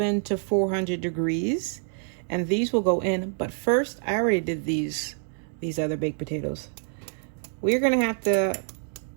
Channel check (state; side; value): silent; left; 60 dB below the other